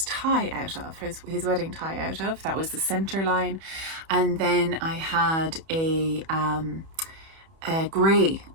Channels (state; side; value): late; left; 31 ms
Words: tie out of, his wedding tie out of. That was the centre line. And then I had a grey,